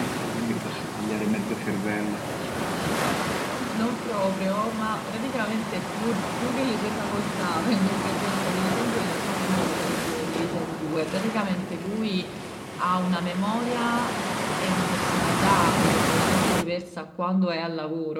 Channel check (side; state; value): both; identical; correlation 1.00